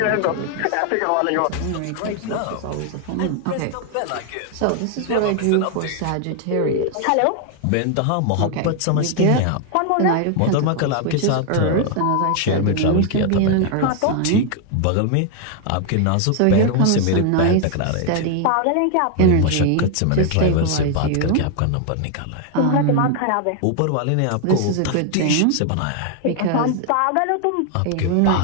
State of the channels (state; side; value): different; both; correlation 0.00